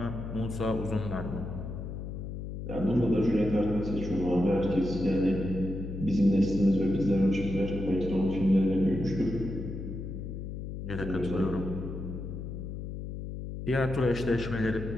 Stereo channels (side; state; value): left; noise; hum, 7 dB below the sound